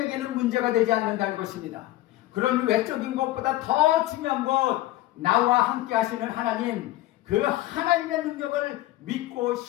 문제가 되지 않는다는 것입니다. 그런 외적인 것보다 더 중요한 것, 나와 함께 하시는 하나님, 그 하나님의 능력을 믿고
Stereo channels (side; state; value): right; quieter; 16.1 dB